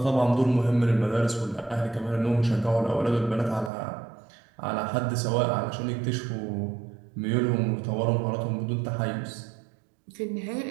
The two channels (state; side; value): drops out; left; at 3.7 s